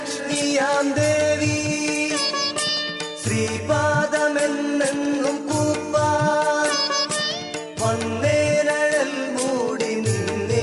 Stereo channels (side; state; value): both; identical; correlation 1.00